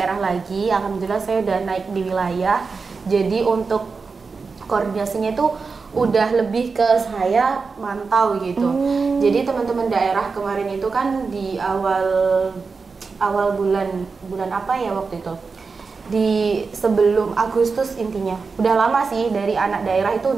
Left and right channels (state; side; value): quieter; left; 4.7 dB